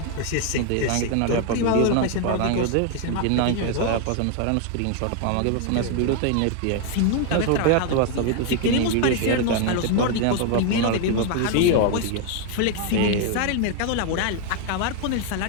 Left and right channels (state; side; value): different; both; correlation 0.01